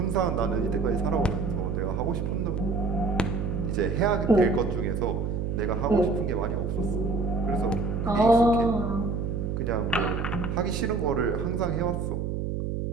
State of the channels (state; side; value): noise; right; hum, 2 dB below the sound